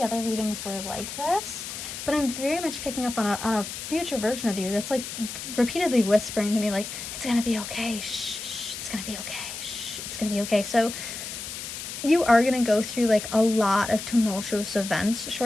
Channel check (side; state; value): left; noise; hiss, 8 dB below the sound